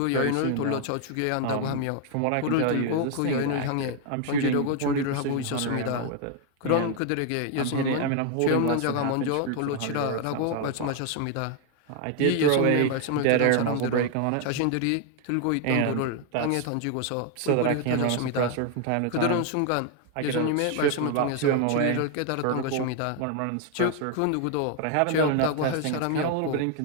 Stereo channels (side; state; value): both; different; correlation 0.00